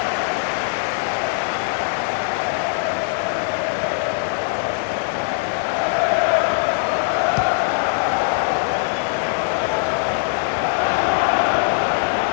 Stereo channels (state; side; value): silent; right; digital silence